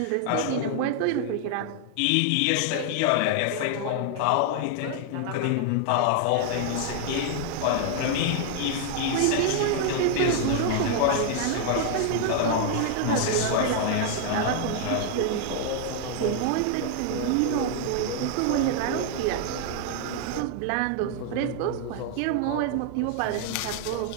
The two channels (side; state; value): both; different; correlation 0.00